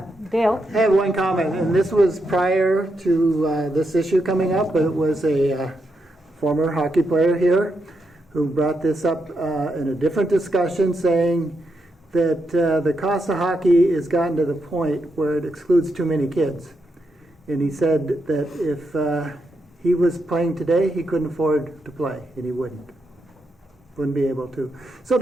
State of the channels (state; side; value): normal; both; correlation 0.83